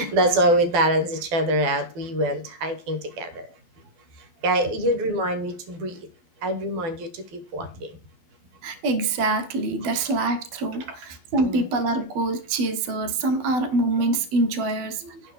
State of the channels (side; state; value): left; late; 12 ms